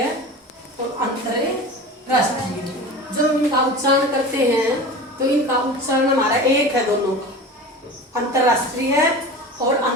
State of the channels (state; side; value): normal; both; correlation 0.33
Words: और अंतरराष्ट्रीय। जब हम इनका उच्चारण करते हैं तो इनका उच्चारण हमारा एक है दोनों का, अंतरराष्ट्रीय और